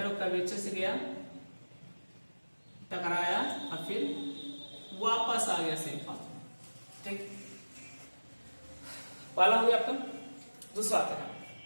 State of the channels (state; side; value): inverted; both; correlation -1.00